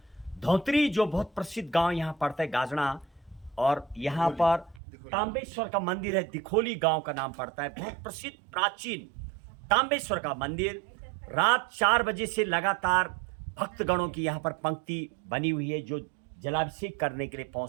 धौतरी जो बहुत प्रसिद्ध गांव यहाँ पड़ता है गाजड़ा, और यहाँ पर तांबेश्वर का मंदिर है। दिखोली गांव का नाम पड़ता है। बहुत प्रसिद्ध प्राचीन तांबेश्वर का मंदिर। रात 4 बजे से लगातार भक्तगणों की यहाँ पर पंक्ति बनी हुई है जो जलाभिषेक करने के लिए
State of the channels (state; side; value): drops out; left; at 4.8 s